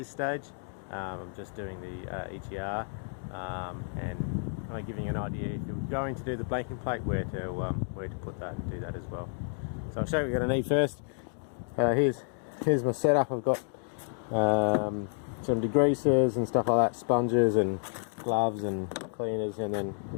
stage. I'm just doing the EGR and I'm giving you an idea if you're going to do the blanking plate where to put that and do that as well. So I'll show you what you're going to need first. Here's my setup. I've got some degreasers and stuff like that, sponges and gloves and cleaners, and then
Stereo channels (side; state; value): right; silent; digital silence